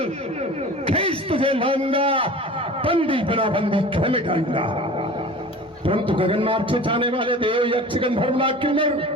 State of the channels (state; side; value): normal; both; correlation 0.39